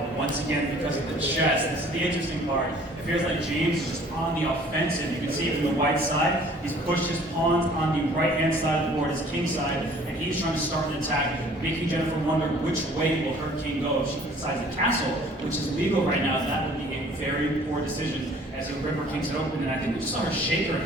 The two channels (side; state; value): both; normal; correlation 0.53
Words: once again because of the chest. This is the interesting part. It feels like James is just on the offensive. You can see it from the white side. He's pushed his pawns on the right-hand side of the board, his king side, and he's trying to start an attack, making Jennifer wonder which way will her king go if she decides to castle, which is legal right now. That would be a very poor decision as the river kings it open, and I think we just saw her shake her